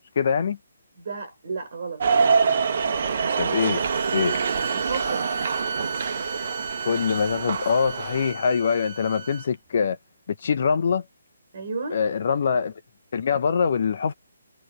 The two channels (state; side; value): inverted; both; correlation -0.77